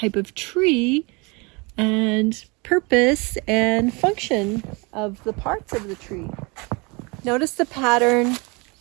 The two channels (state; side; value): quieter; left; 28.4 dB